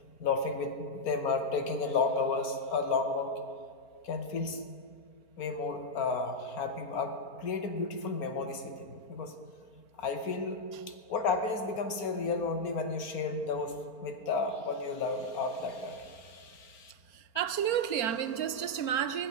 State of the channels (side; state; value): right; late; 4.4 ms